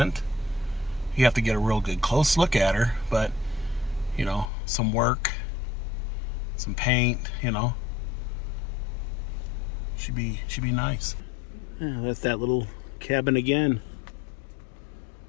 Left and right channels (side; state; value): right; drops out; at 4.5 s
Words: You have to get a real good close look at her, but you know, some work, some paint, you know, should be nice. Yeah, that's that little cabin again.